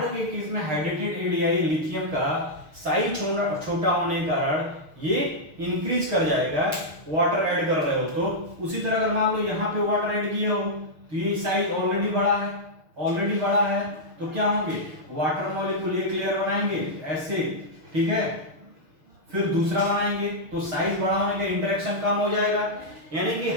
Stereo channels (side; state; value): left; late; 6.5 ms